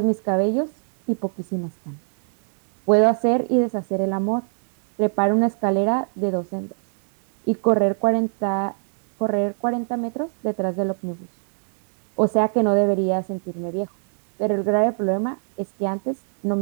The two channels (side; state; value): left; silent; digital silence